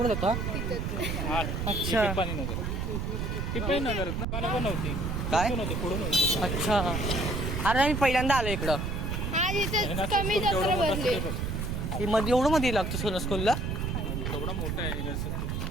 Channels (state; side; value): noise; right; rumble, 2 dB below the sound